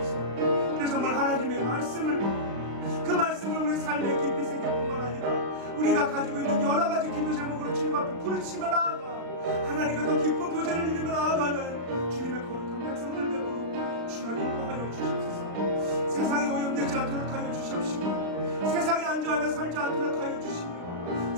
그래서 정말 하나님의 말씀을, 그 말씀을 우리 삶에 깊이 새길 뿐만 아니라 우리가 가지고 있는 여러 가지 기도 제목으로 주님 앞에 부르치며 나아가 하나님과 더 깊은 교제를 누리며 나아가는 주님의 거룩한 백성들 되도록 주여 인도하여 주시옵소서. 세상에 오염되지 않도록 하여 주시옵시고 세상에 안주하며 살지 않도록 하여 주시며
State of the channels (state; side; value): late; left; 35 ms